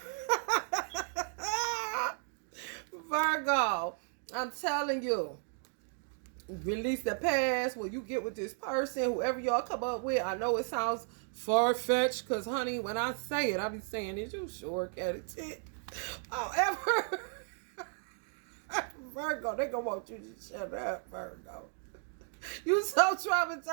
Virgo, I'm telling you. Release the past when you get with this person, whoever y'all come up with. I know it sounds far-fetched because, honey, when I say it, I be saying it. You sure cat it. However, Virgo, they gonna want you to shut up, Virgo. You so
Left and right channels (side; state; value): left; silent; 55 dB below the other